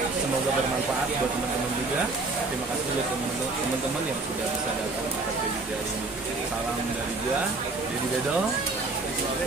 Semoga bermanfaat buat teman-teman juga. Terima kasih buat teman-teman yang sudah bisa datang ke kredit hari ini. Salam dari gua, Dedi Bedol,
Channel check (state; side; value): quieter; left; 3.5 dB